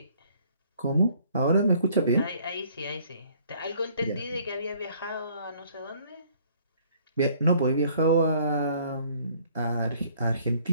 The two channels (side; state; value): both; inverted; correlation -0.59